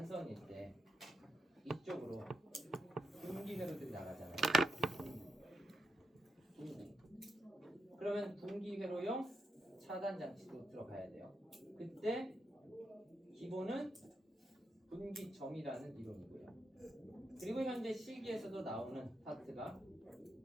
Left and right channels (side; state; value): both; normal; correlation 0.83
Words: 때 이쪽으로 분기회로들이 나가잖아요. 분기. 그러면 분기회로용 차단 장치도 들어가야 돼요. 그때 기본은 분기점이라는 이론이고요. 그리고 현재 실기에서도 나오는 파트가